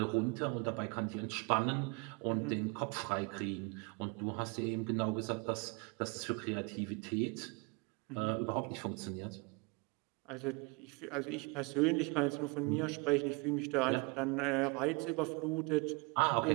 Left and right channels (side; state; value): left; quieter; 30.0 dB